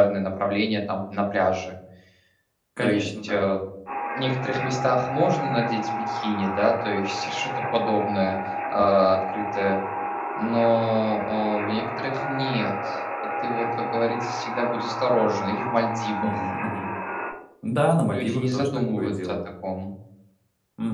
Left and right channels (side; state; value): both; identical; correlation 1.00